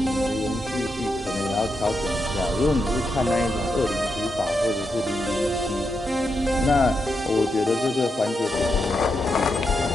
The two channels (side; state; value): both; normal; correlation 0.84